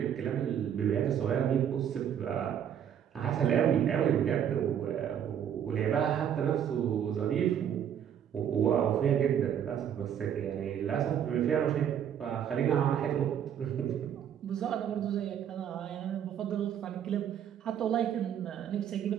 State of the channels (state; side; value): quieter; left; 9.2 dB